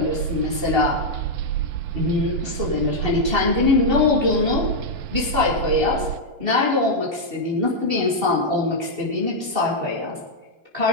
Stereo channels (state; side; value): late; left; 2.7 ms